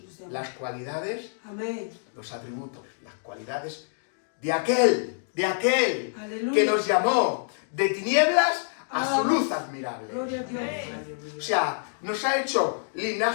nos llamó. las cualidades, Amén. los atributos, las cualidades de aquel Aleluya. que nos llamó de tinieblas a su luz admirable. Gloria a Dios. O sea, nos ha hecho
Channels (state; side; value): silent; right; digital silence